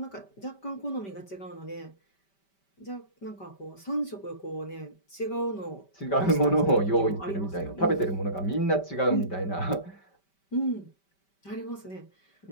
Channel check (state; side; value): late; right; 5.1 ms